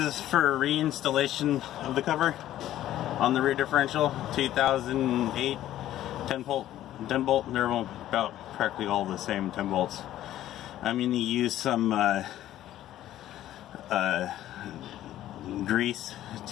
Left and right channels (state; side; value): quieter; right; 13.1 dB